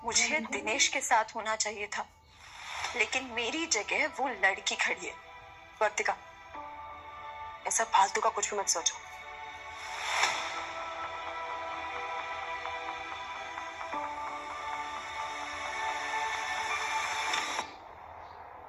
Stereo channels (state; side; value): identical; both; correlation 1.00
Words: मुझे दिनेश के साथ होना चाहिए था, लेकिन मेरी जगह वो लड़की खड़ी है। वर्तिका, ऐसा फालतू का कुछ भी मत सोचो।